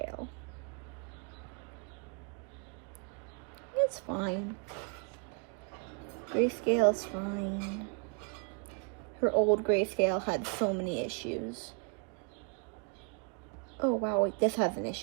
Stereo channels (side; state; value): left; quieter; 38.7 dB